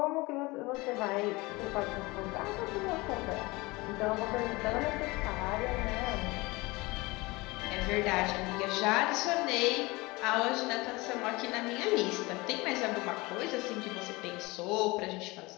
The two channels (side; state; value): right; quieter; 23.0 dB